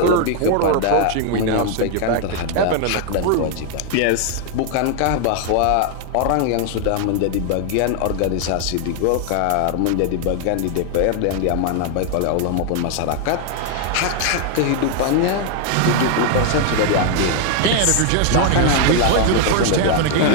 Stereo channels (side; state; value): both; different; correlation 0.00